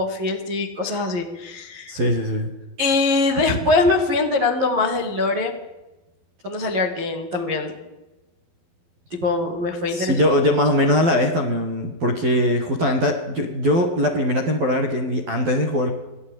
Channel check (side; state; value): left; late; 12 ms